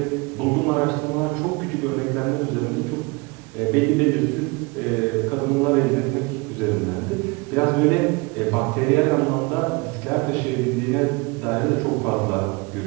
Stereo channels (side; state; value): left; quieter; 27.0 dB